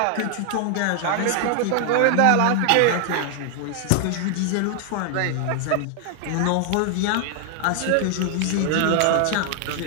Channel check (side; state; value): both; different; correlation 0.00